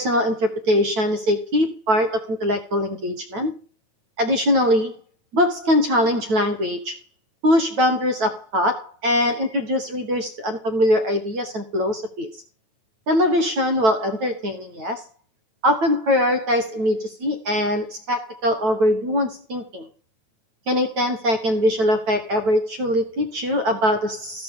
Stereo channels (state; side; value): late; left; 9.1 ms